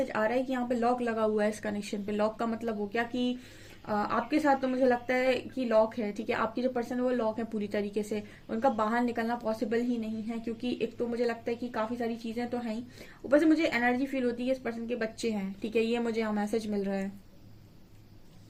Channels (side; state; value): both; identical; correlation 1.00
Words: आ रहा है कि यहाँ पे लॉक लगा हुआ है इस कनेक्शन पे। लॉक का मतलब हो गया कि आपके साथ तो मुझे लगता है कि लॉक है। ठीक है, आपकी जो पर्सन है वो लॉक है पूरी तरीके से, उनका बाहर निकलना पॉसिबल ही नहीं है, क्योंकि एक तो मुझे लगता है कि काफी सारी चीजें तो हैं ही, ऊपर से मुझे एनर्जी फील होती है इस पर्सन के बच्चे हैं। ठीक है, ये मुझे यहाँ मैसेज मिल रहा है।